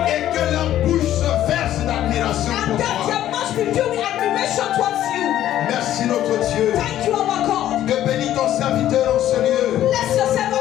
just be filled with admiration towards you. Merci notre Dieu Thank you, our God. de bénir ton serviteur en ce lieu. Bless yourself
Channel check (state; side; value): quieter; right; 12.4 dB